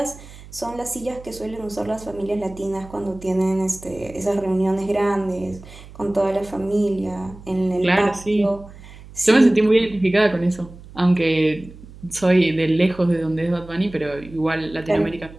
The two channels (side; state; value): right; noise; hum, 18 dB below the sound